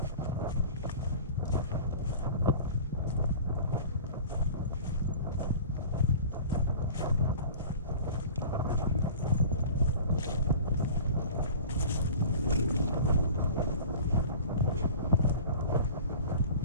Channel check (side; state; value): both; inverted; correlation -0.40